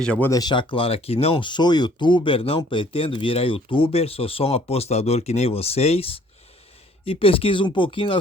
já vou deixar claro aqui, não sou youtuber, não pretendo virar youtuber, sou só um apostador que nem vocês. E pesquiso um pouquinho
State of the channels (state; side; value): normal; both; correlation 0.58